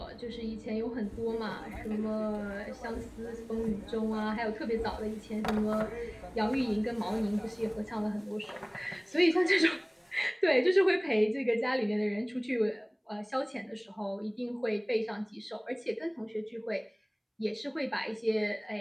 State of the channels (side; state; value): both; identical; correlation 1.00